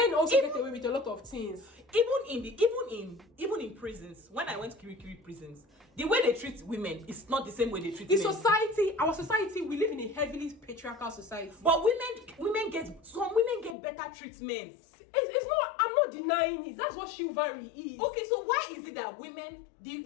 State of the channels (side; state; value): right; drops out; at 13.8 s